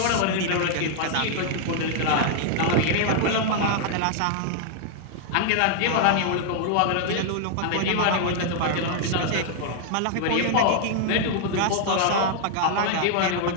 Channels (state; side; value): different; both; correlation 0.00